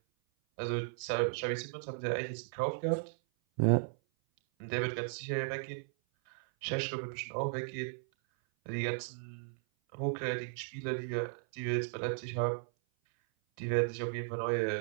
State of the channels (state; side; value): silent; left; 54 dB below the other